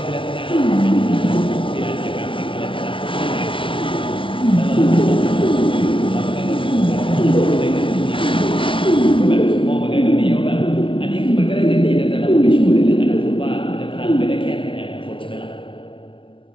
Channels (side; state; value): right; late; 0.25 ms